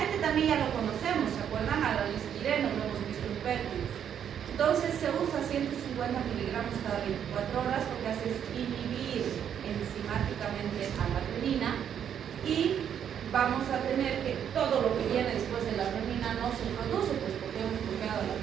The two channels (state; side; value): quieter; left; 8.9 dB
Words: este también ya lo conocemos, ¿se acuerdan? Al alistireno, lo hemos visto en pértidos. Entonces, se usa 150 miligramos cada 24 horas, lo que hace es inhibir enzimáticamente a la renina y vamos a tener que todo lo que viene después de la renina no se produce, pues porque hemos bloqueado la